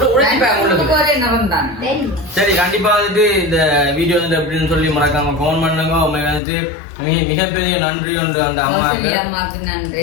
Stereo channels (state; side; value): drops out; right; at 6.4 s